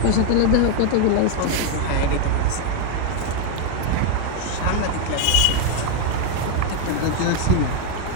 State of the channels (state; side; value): different; both; correlation 0.01